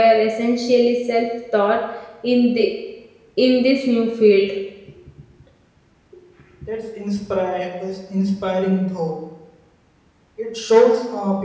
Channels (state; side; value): identical; both; correlation 1.00